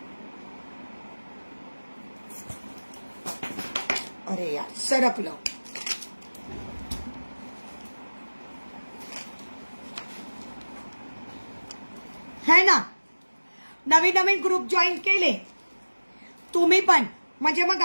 अरे यार, सरकलं. है ना. नवीन नवीन ग्रुप जॉईन केले तुम्ही पण, म्हणजे मग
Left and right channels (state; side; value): inverted; both; correlation -1.00